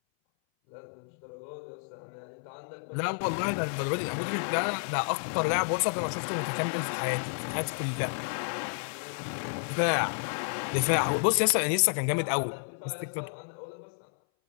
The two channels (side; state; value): right; silent; 58 dB below the other